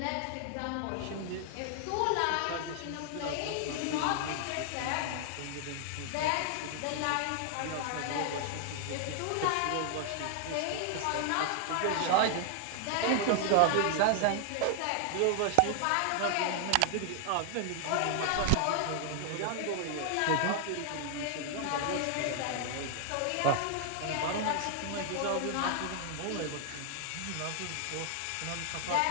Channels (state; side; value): different; both; correlation 0.00